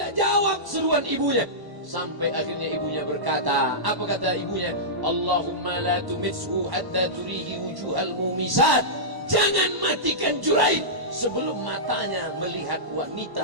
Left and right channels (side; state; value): left; late; 1.1 ms